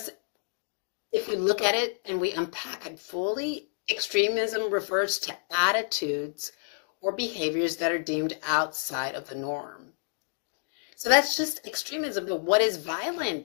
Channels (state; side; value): silent; right; digital silence